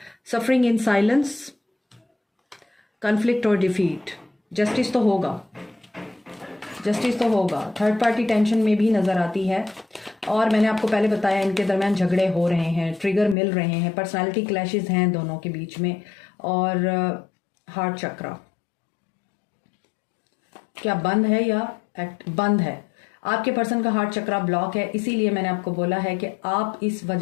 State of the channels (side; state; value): right; drops out; at 13.4 s